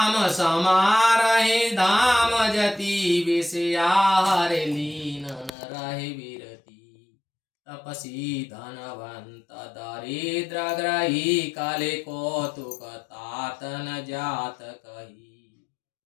समारहि धाम जति, विषया हरि लीन रहि विरति, तपसी धनवंत दरिद्र ग्रही, काले कौतुक तात न जात कही।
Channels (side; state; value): right; drops out; at 5.5 s